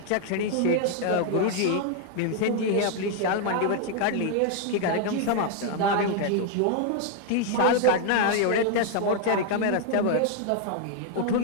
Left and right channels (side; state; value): both; different; correlation 0.00